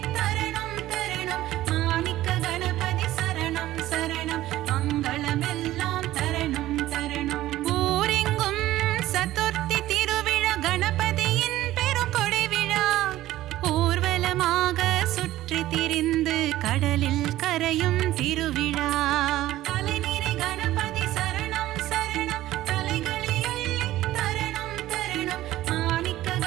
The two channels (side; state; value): left; quieter; 15.1 dB